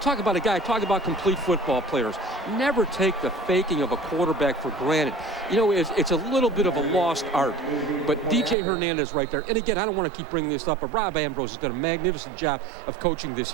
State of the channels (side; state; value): left; drops out; at 8.6 s